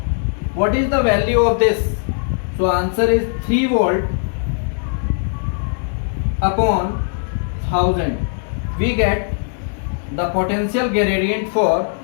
what is the value of this? So answer is 3 volt upon 1000. We get the potential gradient for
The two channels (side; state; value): right; silent; digital silence